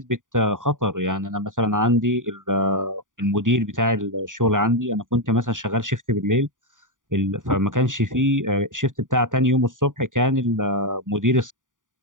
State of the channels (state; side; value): late; left; 0.88 ms